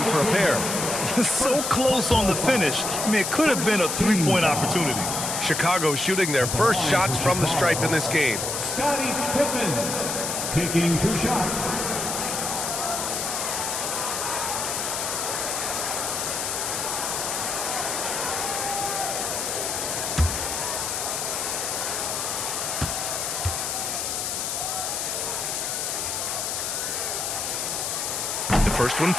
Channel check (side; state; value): left; noise; hiss, 2 dB below the sound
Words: for a pair. So close on the finish. I mean, it could have been a three-point opportunity. Chicago shooting their first shots from the stripe in this game. Scottie Pippen taking 2 shots. The first one